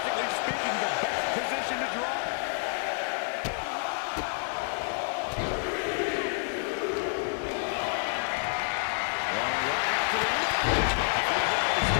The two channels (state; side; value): silent; right; 59 dB below the other